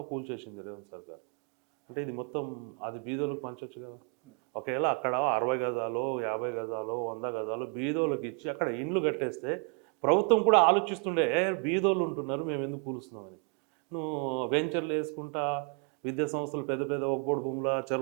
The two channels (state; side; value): quieter; left; 35.5 dB